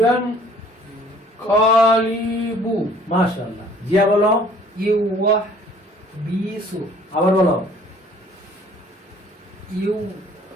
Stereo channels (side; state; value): both; normal; correlation 0.55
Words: কালিবু মাশাআল্লাহ। জিয়া বলো। ইউয়া বিসু আবার বলো। ইউ